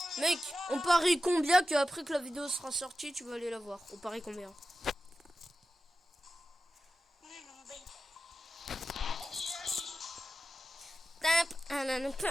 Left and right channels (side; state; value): both; normal; correlation 0.91